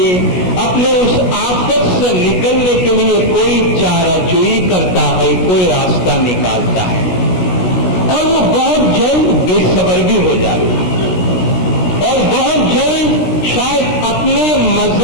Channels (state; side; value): late; right; 16 ms